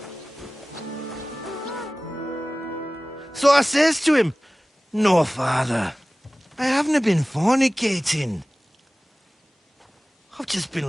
So I says to him, "No, father, I haven't been fornicating. I've just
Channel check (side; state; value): both; normal; correlation 0.97